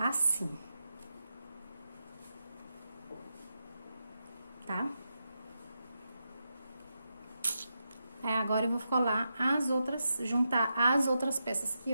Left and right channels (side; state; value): both; inverted; correlation -0.87